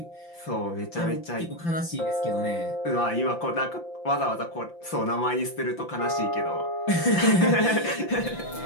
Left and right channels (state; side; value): late; right; 5.8 ms